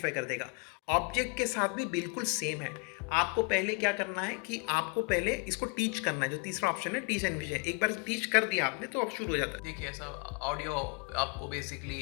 कर देगा। ऑब्जेक्ट के साथ भी बिल्कुल सेम है। आपको पहले क्या करना है कि आपको पहले इसको टीच करना है, जो तीसरा ऑप्शन है टीच एनविजन। एक बार टीच कर दिया आपने तो अब शुरू हो जाता है। देखिए ऐसा ऑडियो आपको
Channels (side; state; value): right; quieter; 32.0 dB